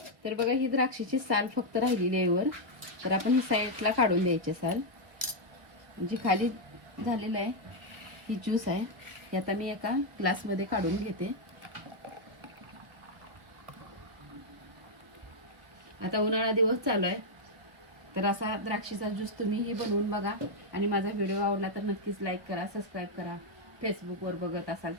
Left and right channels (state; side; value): late; left; 1.1 ms